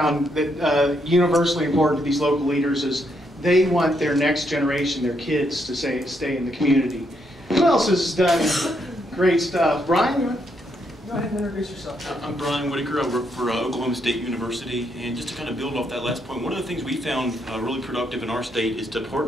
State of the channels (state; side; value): normal; both; correlation 0.76